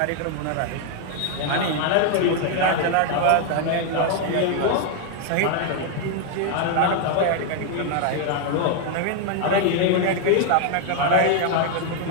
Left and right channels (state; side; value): different; both; correlation 0.00